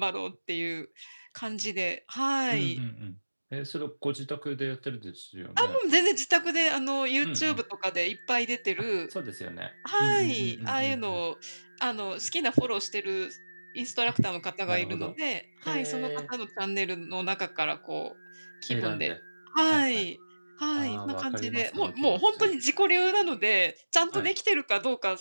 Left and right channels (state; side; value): inverted; both; correlation -1.00